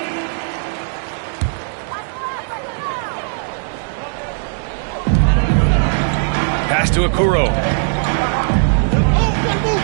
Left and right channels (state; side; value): silent; left; 67 dB below the other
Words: Pass to Okuro.